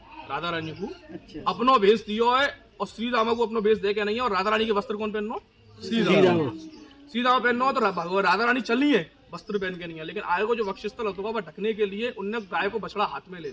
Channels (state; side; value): identical; both; correlation 1.00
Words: राधा रानी को, अपनो भेज दियो है। और श्री दामा को अपनो भेज दे के नहीं है। और राधा रानी के वस्त्र कौन पहनो? श्री दामा। श्री दामा पहनो तो राधा रानी चली है, वस्त्र पहन के नहीं है। लेकिन आय को जो वक्षस्थल होता है वह ढकने के लिए उनने गाय को बछड़ा हाथ में ले